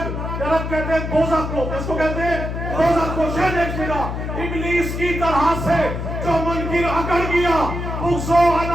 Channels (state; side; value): noise; left; hum, 4 dB below the sound